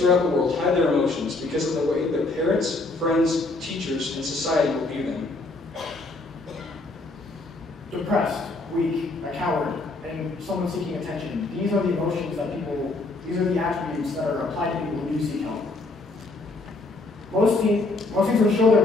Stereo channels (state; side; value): quieter; right; 3.2 dB